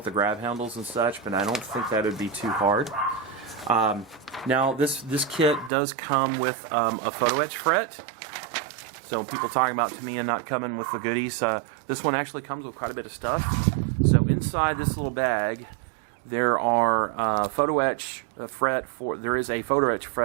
the grab handles and such, but I don't think that would be too hard. Now, this kit does come with a photo etch fret. So people talking about Tamiya not coming with the goodies, this one actually comes with quite a bit of stuff. So inside this little bag, there are photo etch fret for. There is a photo etch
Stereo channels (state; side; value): drops out; left; at 5.7 s